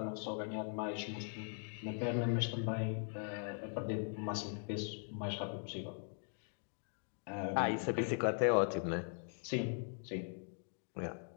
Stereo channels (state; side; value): silent; right; 51 dB below the other